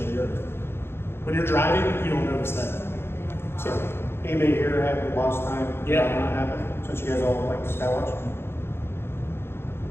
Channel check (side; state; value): right; late; 0.11 ms